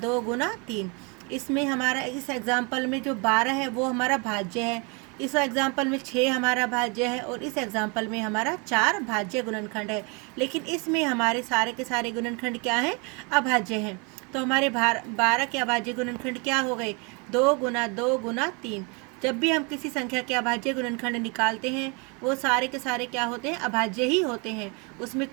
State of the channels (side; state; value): left; quieter; 31.8 dB